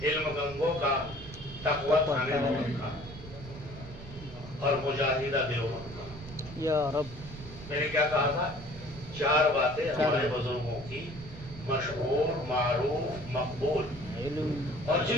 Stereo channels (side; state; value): right; noise; rumble, 14 dB below the sound